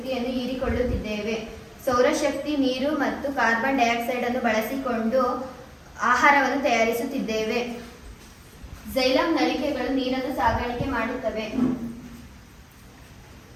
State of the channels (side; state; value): both; identical; correlation 1.00